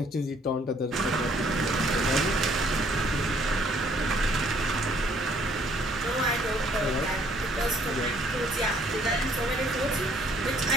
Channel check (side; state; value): both; normal; correlation 0.63